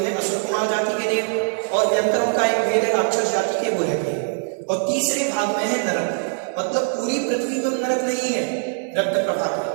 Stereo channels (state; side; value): silent; left; 64 dB below the other